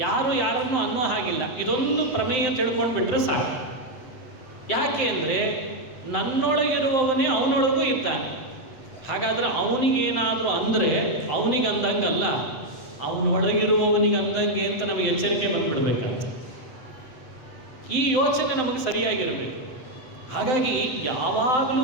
ಯಾರು ಯಾರನ್ನು ಅನ್ನೋ ಹಾಗಿಲ್ಲ. ಇದೊಂದು ಪ್ರಮೇಯ ತಿಳ್ಕೊಂಡು ಬಿಟ್ಟರೆ ಸಾಕು. ಯಾಕೆ ಅಂದರೆ ನನ್ನೊಳಗಿರುವವನೇ ಅವನೊಳಗೂ ಇದ್ದಾನೆ. ಹಾಗಾದರೆ ಅವನಿಗೇನಾದರೂ ಅಂದರೆ ಅವನಿಗಂದಂಗಲ್ಲ, ಅವನೊಳಗಿರುವವನಿಗಂದಂಗೆ ಅಂತ ನಮಗೆ ಎಚ್ಚರಿಕೆ ಬಂದುಬಿಡ್ಬೇಕಂತ. ಈ ಯೋಚನೆ ನಮಗೆ ಸರಿಯಾಗಿರಬೇಕು. ಹಾಗಾಗಿ ಯಾವಾಗಲೂ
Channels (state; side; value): late; right; 7.8 ms